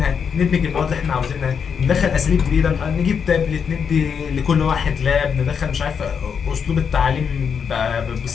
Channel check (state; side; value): quieter; right; 6.8 dB